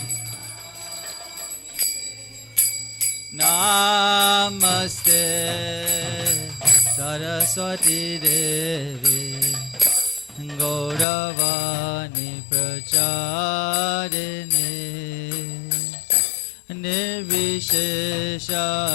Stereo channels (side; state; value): right; drops out; at 11.1 s